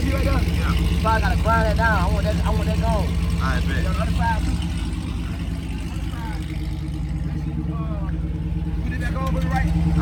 right there? Yeah. So I gotta grind that down. I want that gone. I bet. On the other side too. Put it back on, put it right.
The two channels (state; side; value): identical; both; correlation 1.00